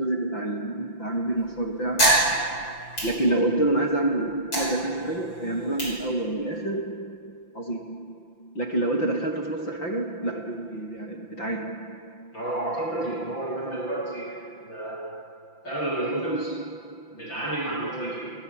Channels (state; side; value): late; right; 5.9 ms